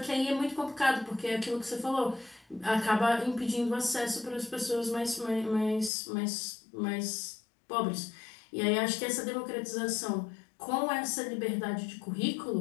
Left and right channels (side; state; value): right; drops out; at 5.9 s